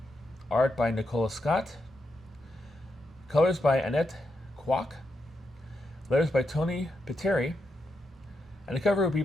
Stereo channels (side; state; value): both; normal; correlation 0.84